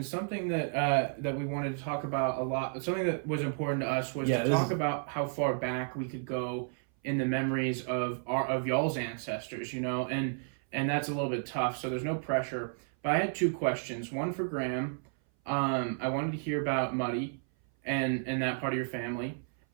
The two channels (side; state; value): left; silent; 56 dB below the other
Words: Something that that we wanted to talk about a lot. Something that was important to us was to talk about how far back we could go in the memories of y'all's ancestors. You know, and that's a little bit tough. So there's no pressure. But I had two questions. One for Graham. I wanted to hear about Muddy and that part of your family,